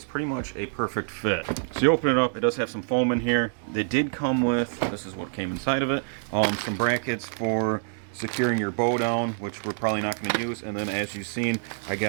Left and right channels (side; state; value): left; silent; digital silence